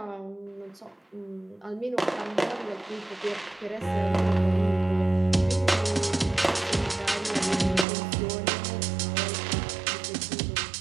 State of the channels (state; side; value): drops out; left; at 7.9 s